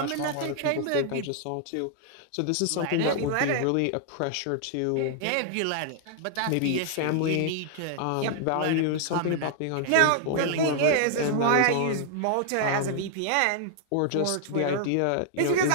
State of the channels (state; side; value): different; both; correlation 0.00